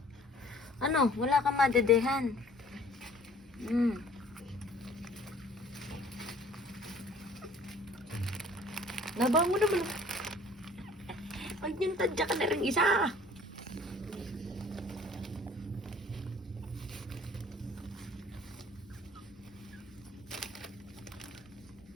Ano? Wala kang madedehan. Laban mo naman. Ay, yung tadya ka na rin isa.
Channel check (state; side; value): normal; both; correlation 0.53